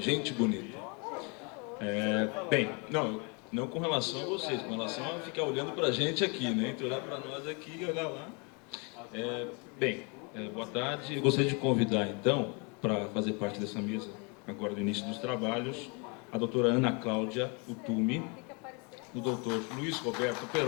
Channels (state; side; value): quieter; right; 32.8 dB